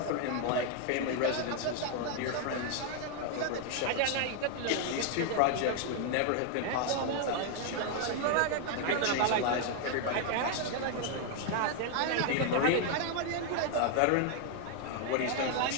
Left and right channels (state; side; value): different; both; correlation 0.00